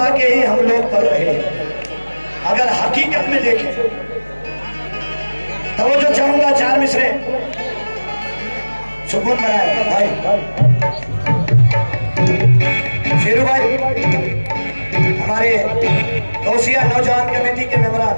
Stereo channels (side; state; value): both; inverted; correlation -1.00